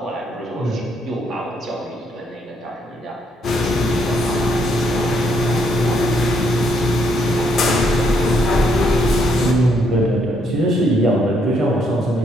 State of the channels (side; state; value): both; normal; correlation 0.73